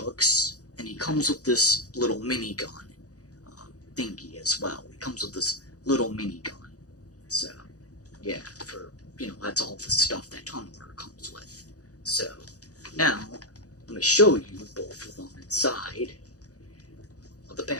and he comes with this little minigun thingy as well. He comes with this little minigun. So, yeah, that's all the stuff that Tunneler comes with. So, now, let me show you both of them inside of the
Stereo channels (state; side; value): late; right; 0.67 ms